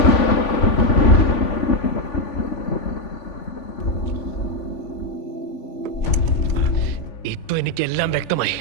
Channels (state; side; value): late; right; 3.5 ms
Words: ഇപ്പൊ എനിക്കെല്ലാം വ്യക്തമായി.